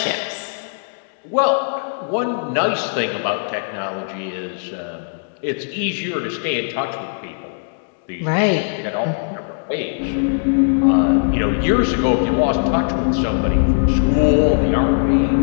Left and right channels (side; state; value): right; silent; digital silence